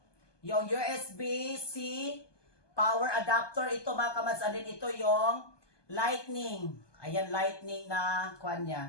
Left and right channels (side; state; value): right; late; 1.2 ms